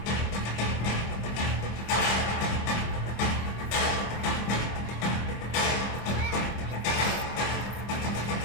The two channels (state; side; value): late; right; 25 ms